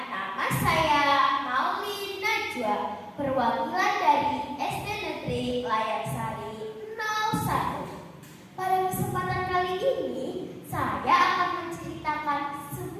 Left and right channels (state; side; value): identical; both; correlation 1.00